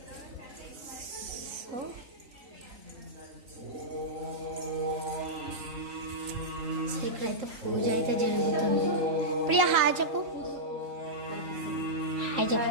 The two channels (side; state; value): left; late; 4.0 ms